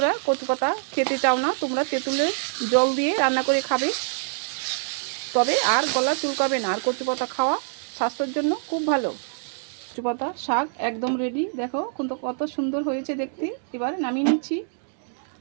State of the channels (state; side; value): silent; left; digital silence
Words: কচু পাতা খেতে চাও না, তোমরা তেঁতুলের জল দিয়ে রান্না করে খাবে, তবে আর গলা চুলকাবে না। আর কচু পাতা খাওয়া স্বাস্থ্যের জন্য খুব ভালো। কচু পাতা শাক একদম রেডি। দেখো কিন্তু কত সুন্দর হয়েছে দেখতে। এবার নামিয়ে নিচ্ছি।